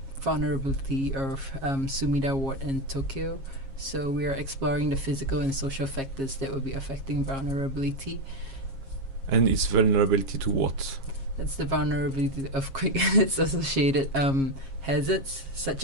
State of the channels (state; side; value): late; left; 7.4 ms